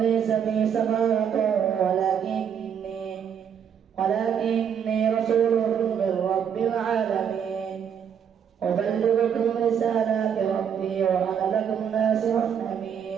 بي سفاهة ولكني رسول من رب العالمين أبلغ ربي وأنا لكم ناصح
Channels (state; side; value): quieter; left; 8.0 dB